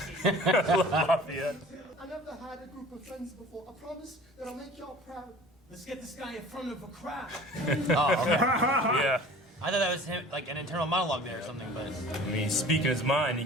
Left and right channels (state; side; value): normal; both; correlation 0.45